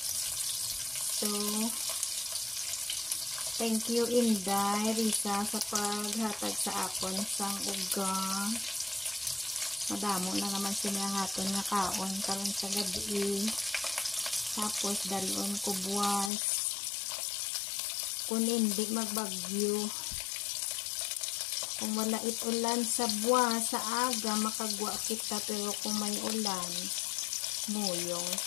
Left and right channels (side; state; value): right; drops out; at 16.3 s